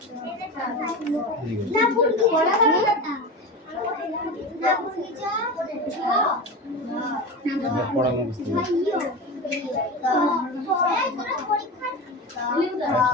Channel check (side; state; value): both; normal; correlation 0.26